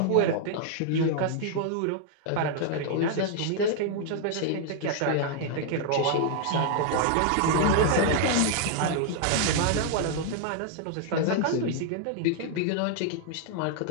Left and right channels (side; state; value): both; different; correlation 0.00